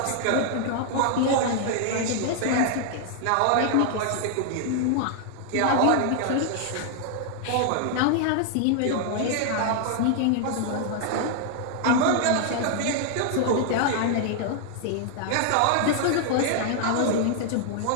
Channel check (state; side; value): different; both; correlation 0.00